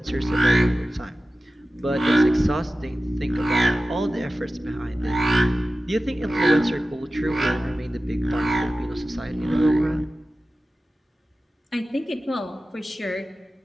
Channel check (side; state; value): both; normal; correlation 0.95